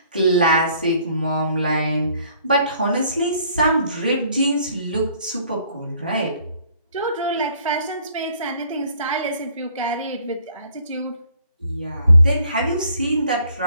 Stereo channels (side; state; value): both; inverted; correlation -0.60